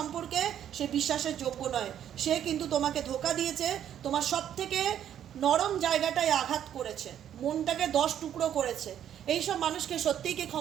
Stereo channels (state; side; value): quieter; left; 10.1 dB